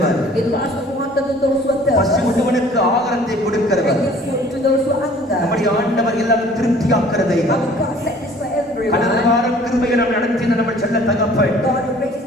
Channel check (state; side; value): normal; both; correlation 0.52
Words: He loves to water to those who are பசி thirsty. உள்ளவனுக்கு ஆகாரத்தை கொடுக்கிறவர். Give food to those who hunger. நம்முடைய ஆண்டவர் எல்லாரும் திருப்தியாக்குறதை Our God satisfies everyone. கடந்த வாரம் கிருபையை நாம் நடத்தின நம்ம செல்ல தகப்பன் God who raises